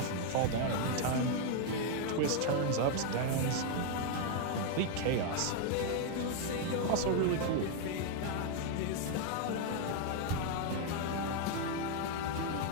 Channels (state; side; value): different; both; correlation 0.00